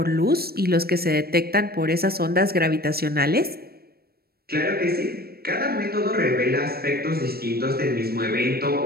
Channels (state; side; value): late; left; 0.45 ms